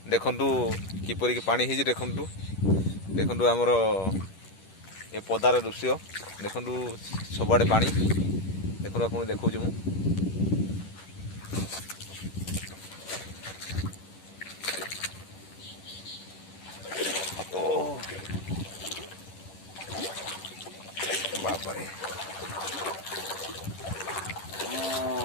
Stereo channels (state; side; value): late; right; 10 ms